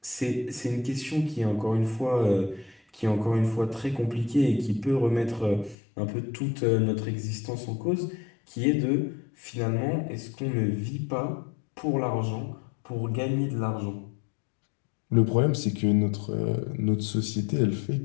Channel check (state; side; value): drops out; right; at 5.8 s